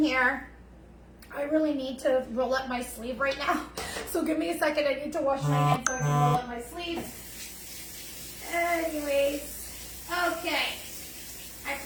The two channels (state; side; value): identical; both; correlation 1.00